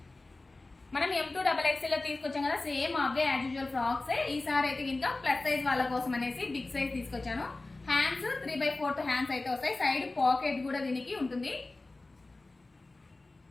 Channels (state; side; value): quieter; right; 3.2 dB